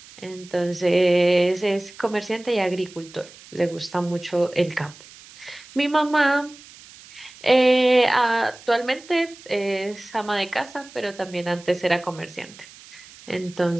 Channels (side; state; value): right; noise; hiss, 21 dB below the sound